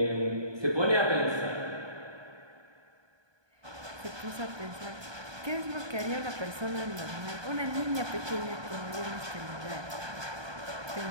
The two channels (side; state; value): left; late; 1.2 ms